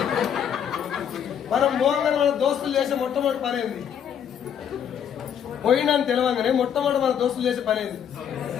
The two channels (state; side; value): quieter; right; 8.6 dB